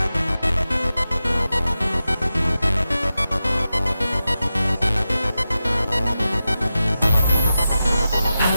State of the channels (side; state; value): both; inverted; correlation -0.91